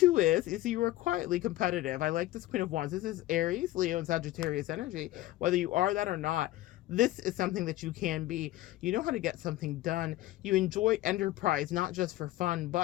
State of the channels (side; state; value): right; quieter; 16.2 dB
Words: is you are quietly competitive. I like this Queen of Wands. This is Aries, Leo, and Sagittarius energy. Whether you are that or not, this is something that you can be. You know how to get something done. You enjoy enterprise, not just for fun,